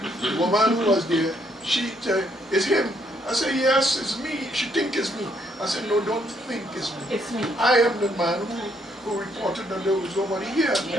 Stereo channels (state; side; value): normal; both; correlation 0.71